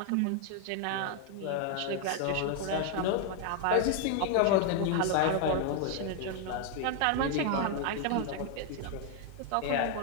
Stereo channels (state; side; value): different; both; correlation 0.00